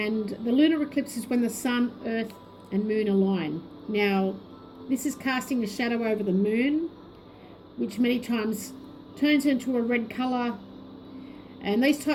the lunar eclipse is when the sun, earth and moon align. Now, this is casting a shadow over the moon, which many times turns into a red colour, and these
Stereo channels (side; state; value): both; identical; correlation 1.00